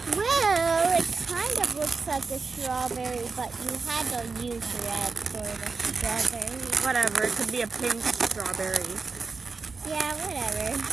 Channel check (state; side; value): quieter; left; 4.5 dB